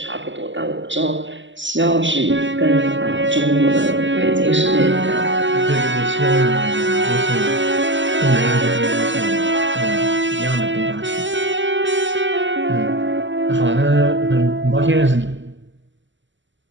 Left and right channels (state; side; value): late; left; 0.54 ms